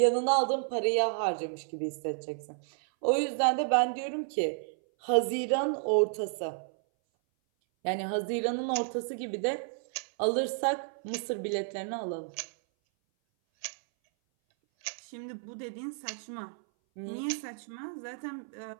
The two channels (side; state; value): left; silent; 57 dB below the other